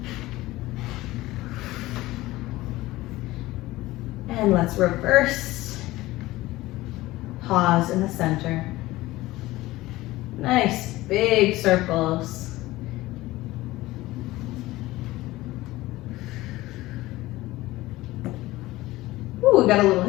And let's reverse. Pause in the center. Nice big circles. Ooh, we got a little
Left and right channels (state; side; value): quieter; right; 18.1 dB